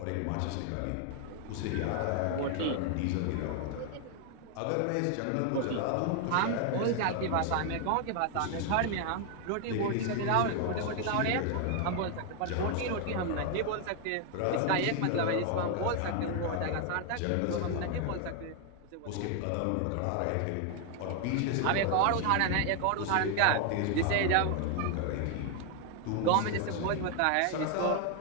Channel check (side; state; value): both; different; correlation 0.00